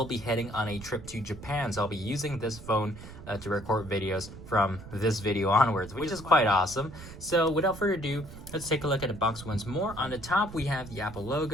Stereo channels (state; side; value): noise; right; rumble, 14 dB below the sound